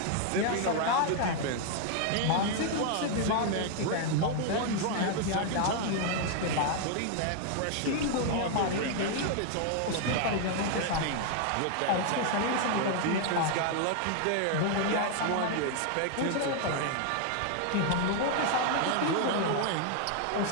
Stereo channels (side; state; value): both; different; correlation 0.00